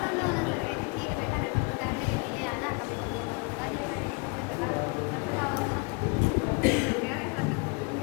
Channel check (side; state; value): right; quieter; 31.4 dB